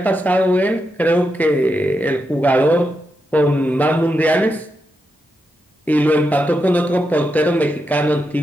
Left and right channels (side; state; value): both; normal; correlation 0.85